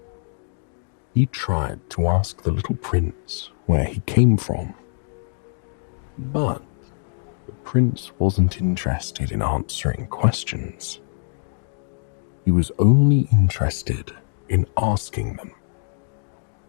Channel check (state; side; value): silent; right; digital silence